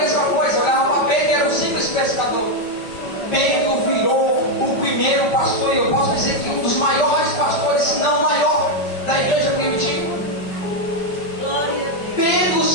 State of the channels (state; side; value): late; right; 5.1 ms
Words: coisa. Olhava para Pedro, era um simples pescador. Pedro virou o primeiro pastor, e eu posso dizer que um dos maiores pastores, se não o maior, da igreja primitiva. Pedro